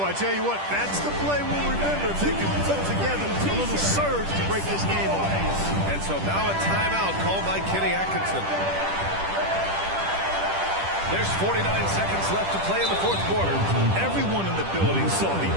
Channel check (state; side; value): late; left; 10 ms